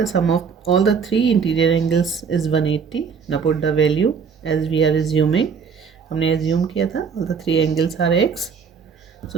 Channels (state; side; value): quieter; left; 6.1 dB